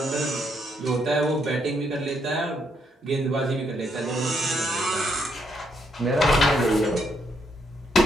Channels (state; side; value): normal; both; correlation 0.75